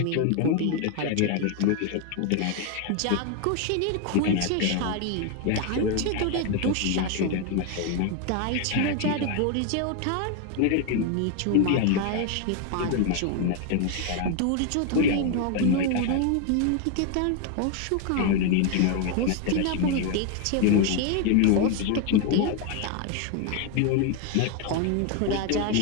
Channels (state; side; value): different; both; correlation 0.01